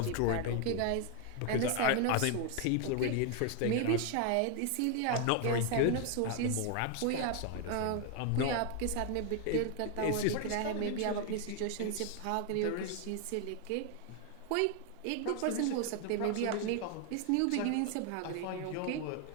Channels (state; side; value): different; both; correlation 0.01